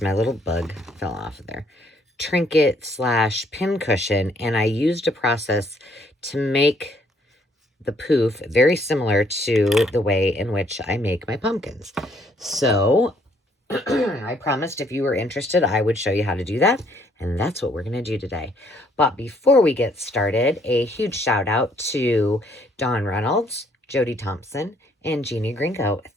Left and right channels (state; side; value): normal; both; correlation 0.66